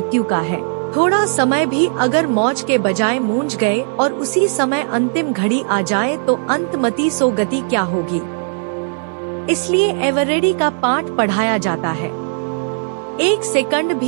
का है। थोड़ा समय भी अगर मौज के बजाय मूंझ गए और उसी समय अंतिम घड़ी आ जाए तो अंतमति सो गति क्या होगी। इसलिए एवर रेडी का पाठ पढ़ाया जाता है। 1 सेकंड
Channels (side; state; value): left; silent; digital silence